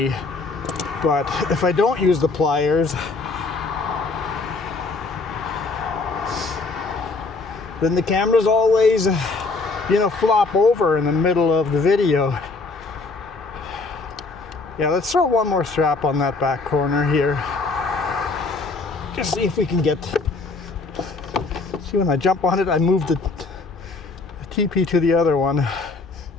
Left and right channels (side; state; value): right; quieter; 3.8 dB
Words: But if I don't use the pliers, then the camera's always, flop over in the middle of the video. Yeah, let's throw one more strap on that back corner here. Just see if we can get, see when I jump on it, I move the TP to the other one.